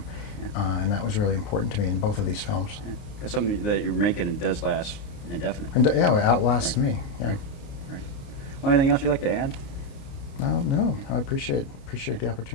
And that was really important to me in both of these films. Yeah. That's something that you're making, and does last indefinitely. And yeah, it outlasts me. Yeah. Right. Well, anything else you'd like to add? No, I appreciate the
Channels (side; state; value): right; late; 29 ms